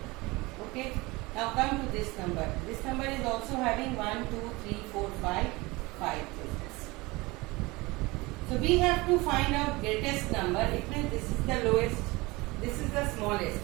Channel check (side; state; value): left; quieter; 22.9 dB